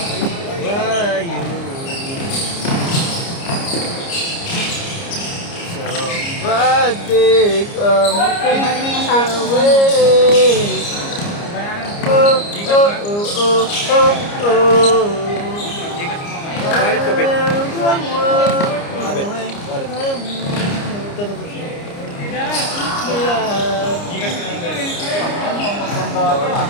Why you? Somebody come take me away. Oh, oh, oh, oh, oh. Gigas mo nga. Wallet ko, Bet. Wallet.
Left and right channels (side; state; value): right; late; 29 ms